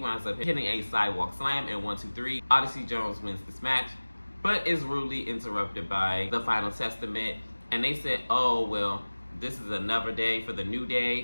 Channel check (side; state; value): both; inverted; correlation -1.00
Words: up hitting a sidewalk slam and 1, 2, 3. Odyssey Jones wins this match, but is rudely interrupted by the Final Testament. And they said, oh, well, this is another day for the New